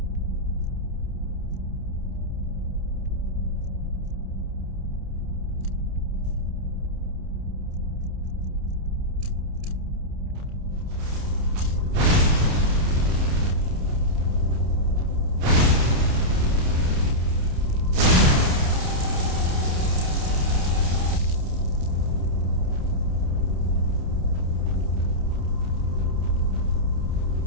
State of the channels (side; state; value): left; late; 29 ms